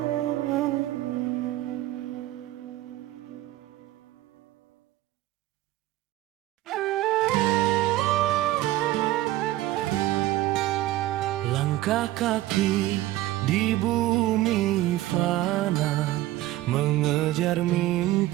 Langkah kaki di bumi fana, mengejar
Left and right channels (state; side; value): quieter; left; 15.8 dB